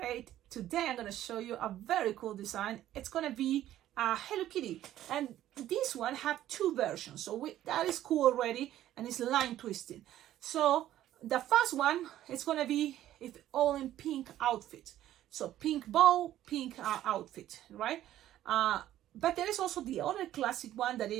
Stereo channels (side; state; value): left; quieter; 12.9 dB